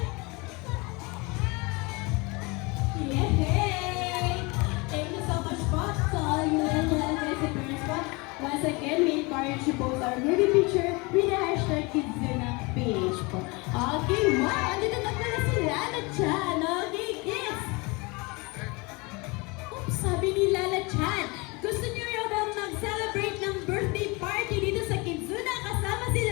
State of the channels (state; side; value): quieter; right; 26.8 dB